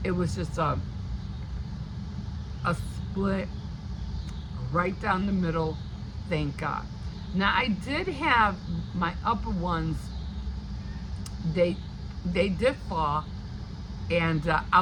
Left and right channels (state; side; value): identical; both; correlation 1.00